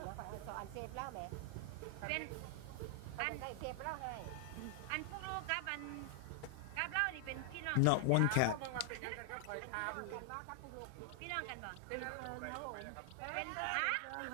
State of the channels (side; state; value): both; different; correlation 0.00